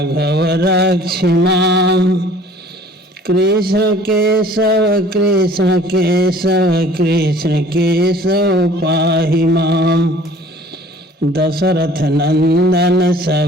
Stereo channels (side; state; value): both; normal; correlation 0.50